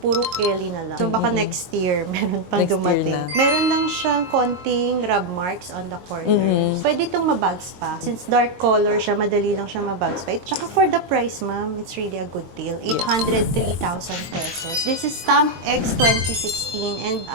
Kelly na lang. So baka next year, meron pang Next year dumating. na. Meron lang siyang konting rub marks on the corners. Pwede itong mabags pa. Since dark color siya, madali lang siya mabags pa. Tsaka for the price, ma'am, it's really a good deal. 803,000 pesos. This is Stamp X 2016 and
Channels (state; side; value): late; left; 22 ms